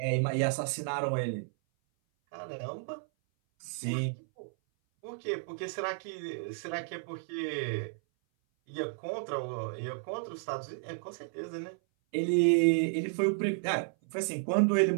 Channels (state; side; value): silent; left; 56 dB below the other